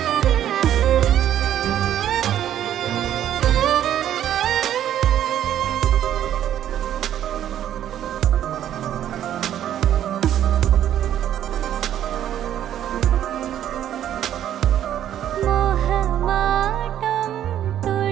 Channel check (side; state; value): left; quieter; 11.0 dB